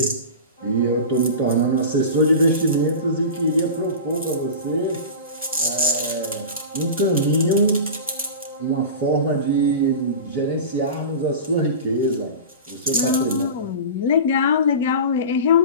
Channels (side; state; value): both; inverted; correlation -0.31